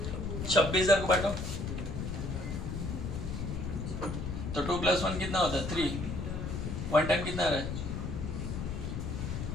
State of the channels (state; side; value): noise; left; rumble, 4 dB below the sound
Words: 26,000 को बांटो तो 2 + 1 कितना होता है? 3। 1 टाइम कितना आ रहा है?